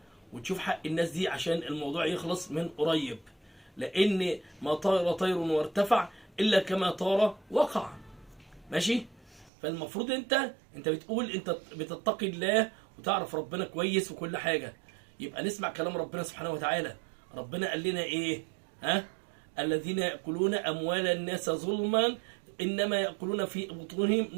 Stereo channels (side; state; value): left; drops out; at 9.5 s